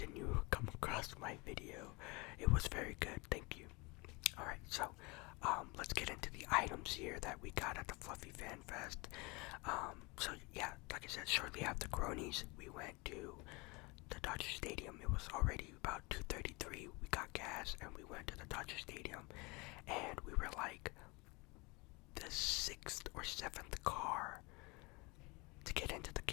you come across my video, it was very good. Thank you. Alright, so let's get into the items here that we got at the Fluffy Fan Fest. So yeah, like I said, shortly after Cronies, we went to the Dodger Stadium. It was already about 2:33. We got gas and we went to the Dodger Stadium, and we were like the 6th or 7th car to get into the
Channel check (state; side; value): quieter; right; 26.7 dB